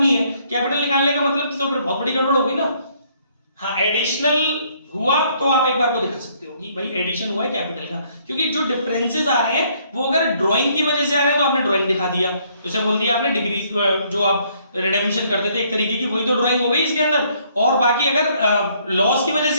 है, कैपिटल निकालने का मतलब तो फिर बहुत बड़ी गड़बड़ हो गई ना। हाँ, एडिशनल हुआ तो आप एक बार को दिखा सकते हो कि भाई एडिशन हुआ है कैपिटल का, क्योंकि जो डिफरेंसेस आ रहे हैं वो अगर ड्राइंग की वजह से आ रहे हैं तो आपने ड्राइंग दिखा दिया, जैसे बोल दिया आपने डिग्री जो आप रिडेम्पशन करते थे एक तरीके की, वही तो ड्राइंग हो गई इसके अंदर। और बाकी अगर लॉस की वजह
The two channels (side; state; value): both; inverted; correlation -0.66